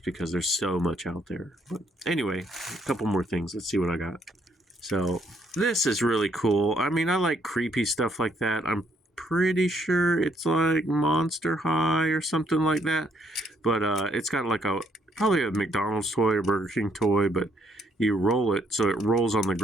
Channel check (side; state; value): both; normal; correlation 0.70